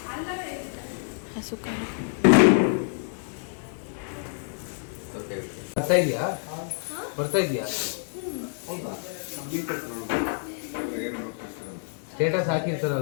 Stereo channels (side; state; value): right; silent; digital silence